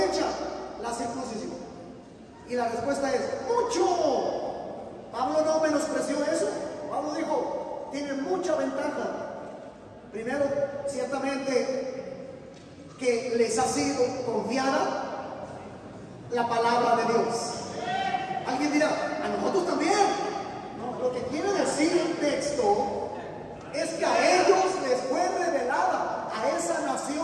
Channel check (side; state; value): both; identical; correlation 1.00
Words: la circuncisión? Y la respuesta es: mucho. Pablo no menospreció eso. Pablo dijo: tiene mucha ventaja. Primero, ciertamente, que les ha sido confiada la palabra de Dios. Alguien dirá: a nosotros también. No, lo que quiere decir el texto es que a ellos les fue revelada, a esa